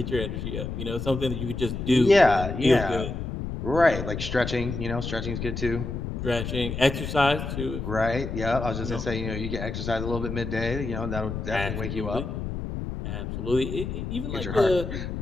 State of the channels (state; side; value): noise; left; rumble, 5 dB below the sound